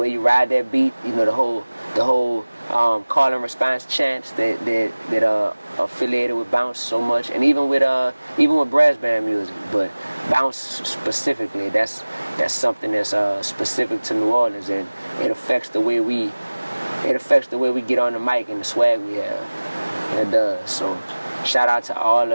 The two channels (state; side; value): inverted; both; correlation -1.00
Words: you ride that beat, you know, the whole call and response chants that are affiliated with bounce so much, and even with brass band music. But bounce specifically, that's something that's specific to New Orleans, and it affects the way we get on the mic and the swag we have. It does. So shout out to all